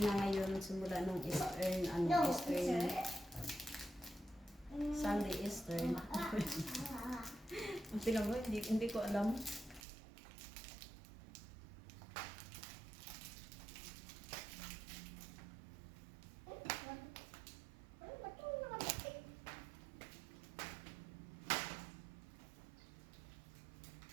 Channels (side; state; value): left; drops out; at 9.8 s